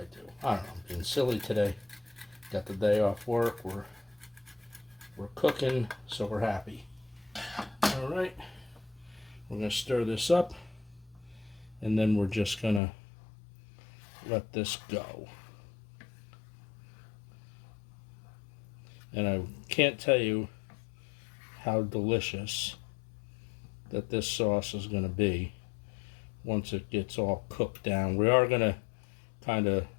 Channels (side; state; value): right; drops out; at 12.8 s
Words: do. I don't know, I'm being silly today. Got the day off work. We're cooking, so we're happy. All right, we're going to stir this up, and then we're just going to let this go. And I can't tell you how delicious that this sauce is going to be once it gets all cooked down. We are going to kind of